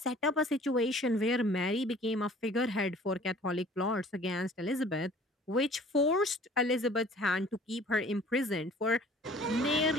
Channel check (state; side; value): normal; both; correlation 0.50